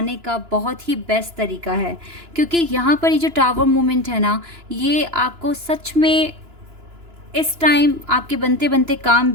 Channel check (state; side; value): late; left; 2.9 ms